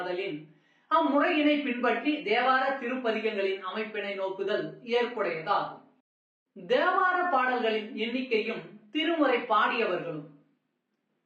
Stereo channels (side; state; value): both; identical; correlation 1.00